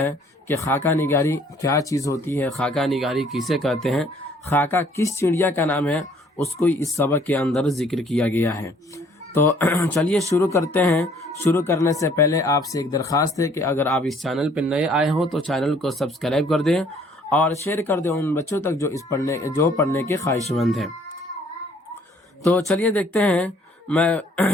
कि खाका निगारी क्या चीज़ होती है, खाका निगारी किसे कहते हैं, खाका किस चिड़िया का नाम है, उसको इस सबक के अंदर जिक्र किया गया है। तो चलिए शुरू करते हैं। शुरू करने से पहले आपसे एक दरख्वास्त है कि अगर आप इस चैनल पर नए आए हो तो चैनल को सब्सक्राइब कर दें और शेयर कर दें उन बच्चों तक जो पढ़ने के ख्वाहिशमंद हैं। तो चलिए देखते हैं।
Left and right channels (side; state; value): both; normal; correlation 0.60